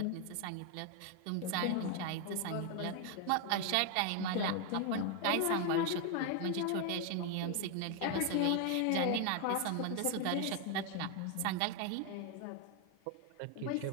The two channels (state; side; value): different; both; correlation 0.01